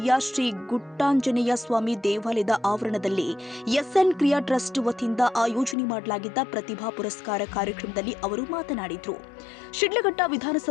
ಶ್ರೀ ಗುಟ್ಟಾಂಜನೇಯ ಸ್ವಾಮಿ ದೇವಾಲಯದ ಆವರಣದಲ್ಲಿ ಎಸ್ಎನ್ ಕ್ರಿಯಾ ಟ್ರಸ್ಟ್ ವತಿಯಿಂದ ಆಯೋಜನೆ ಮಾಡಲಾಗಿದ್ದ ಪ್ರತಿಭಾ ಪುರಸ್ಕಾರ ಕಾರ್ಯಕ್ರಮದಲ್ಲಿ ಅವರು ಮಾತನಾಡಿದರು. ಶಿಡ್ಲಘಟ್ಟ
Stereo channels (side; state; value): right; drops out; at 5.8 s